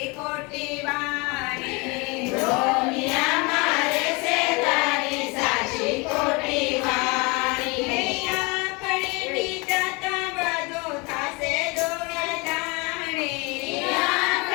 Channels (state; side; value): quieter; right; 27.8 dB